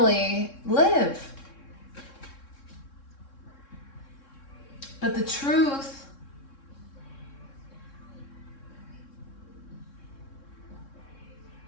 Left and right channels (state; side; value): late; right; 3.6 ms